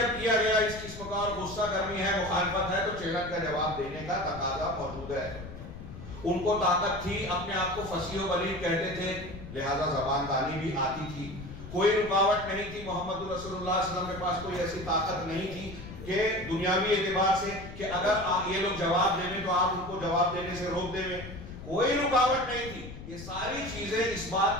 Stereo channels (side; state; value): left; noise; rumble, 12 dB below the sound